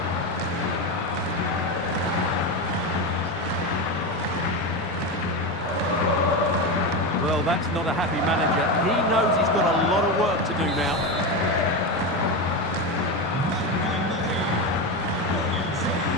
Well, that's not a happy manager. He knows he's got a lot of work to do now.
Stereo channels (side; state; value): both; normal; correlation 0.16